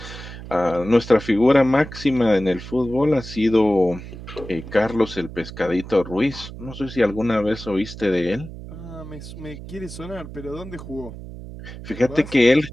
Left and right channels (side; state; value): right; noise; hum, 12 dB below the sound